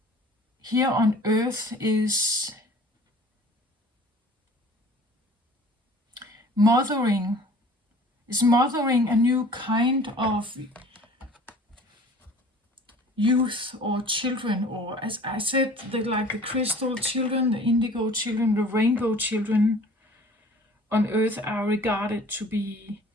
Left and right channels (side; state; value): both; normal; correlation 0.48